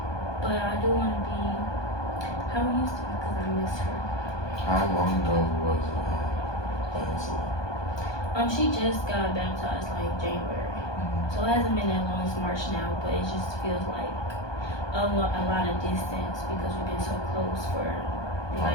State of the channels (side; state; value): right; late; 1.2 ms